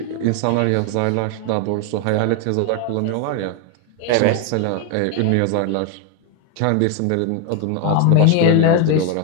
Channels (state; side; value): different; both; correlation 0.01